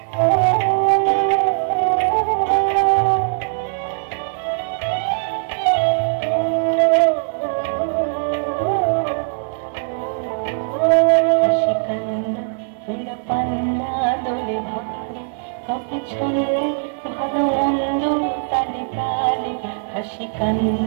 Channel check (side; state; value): left; silent; 64 dB below the other